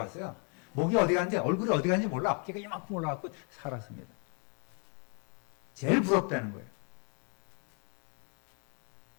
목이 어디 갔는지 얼굴이 어디 갔는지 몰라. 어깨가 이만큼 올라갔고 살았습니다. 제일 부럽다는 거예요.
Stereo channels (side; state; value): right; quieter; 38.3 dB